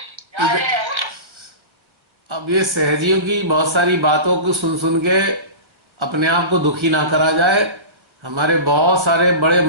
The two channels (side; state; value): left; late; 1.4 ms